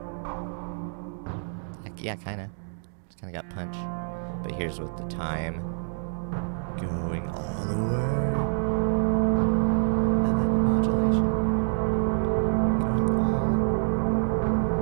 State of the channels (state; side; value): silent; left; digital silence